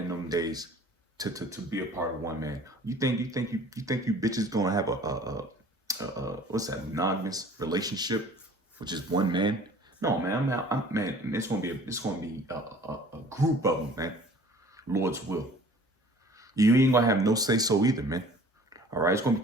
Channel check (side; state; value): both; normal; correlation 0.49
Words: them days to be a part of one man. You think you bitches gonna have a what's that, monogamous relationship with just one man? No, man, man, it's gonna be a group of them, man. Lord's will. You ain't gonna have no say so either, man. All right, it's gonna